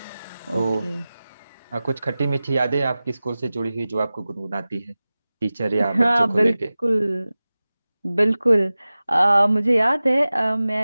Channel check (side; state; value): both; inverted; correlation -0.97